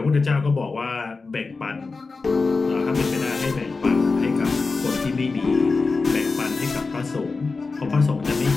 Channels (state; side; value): quieter; right; 4.1 dB